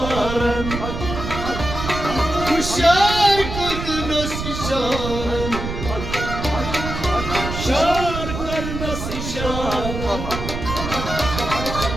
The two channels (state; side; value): noise; right; rumble, 6 dB below the sound